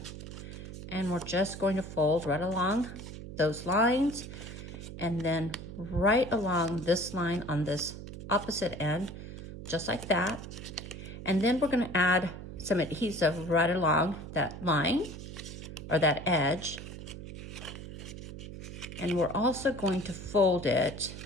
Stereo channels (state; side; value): noise; right; hum, 11 dB below the sound